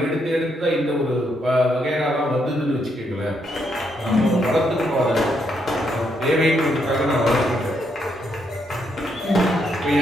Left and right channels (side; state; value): both; normal; correlation 0.77